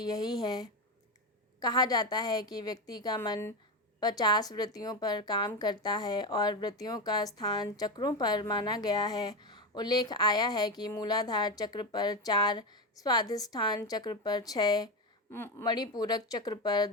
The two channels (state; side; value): normal; both; correlation 0.15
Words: यही है। कहा जाता है कि व्यक्ति का मन 50 वृत्तियों पर काम करता है और वृत्तियों का स्थान चक्रों पर माना गया है। उल्लेख आया है कि मूलाधार चक्र पर 4, स्वाधिष्ठान चक्र पर 6, मणिपूरक चक्र पर